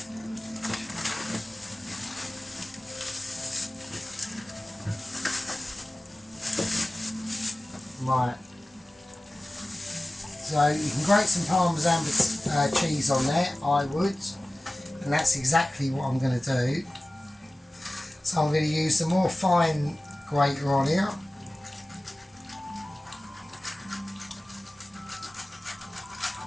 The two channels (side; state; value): both; normal; correlation 0.97